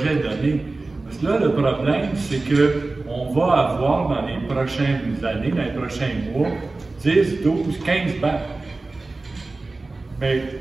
donné. Parce que là, le problème, c'est qu'on va avoir dans les prochaines années, dans les prochains mois, 10, 12, 15 BAP. Mais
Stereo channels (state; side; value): quieter; left; 3.4 dB